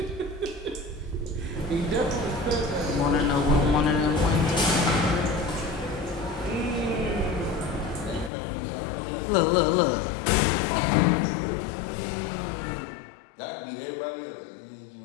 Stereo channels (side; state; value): right; drops out; at 8.3 s